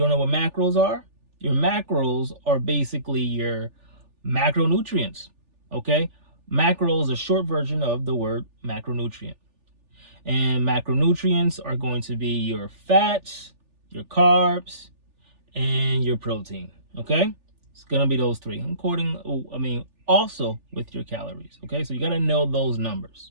know what macros are, your macros are basically your macronutrients, okay? Macro is a short version of the word macronutrient. And macronutrients are going to be your fats, your carbs, and your protein, okay? It's gonna be those 3, also with your calories, okay? So you gotta know those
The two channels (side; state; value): left; late; 3.4 ms